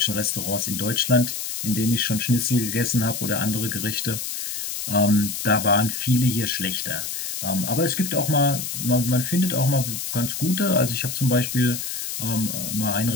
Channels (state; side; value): noise; left; hiss, 5 dB below the sound